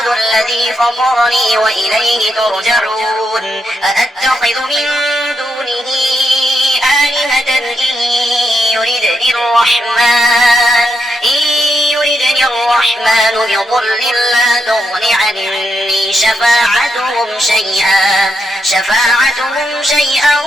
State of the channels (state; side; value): normal; both; correlation 0.82